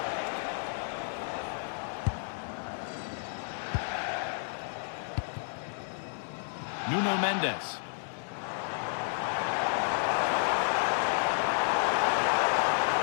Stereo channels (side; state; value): right; silent; 57 dB below the other